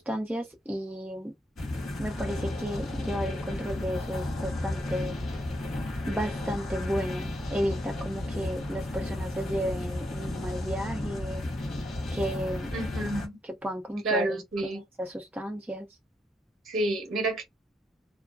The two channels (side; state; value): both; normal; correlation 0.79